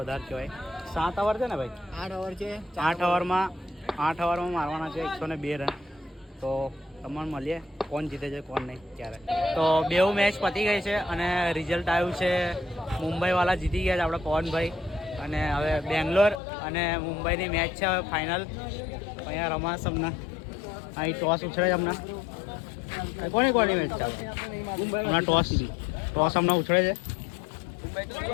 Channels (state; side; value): drops out; right; at 16.4 s